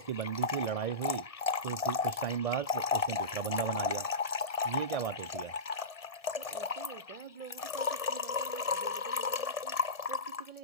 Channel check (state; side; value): late; right; 1.7 ms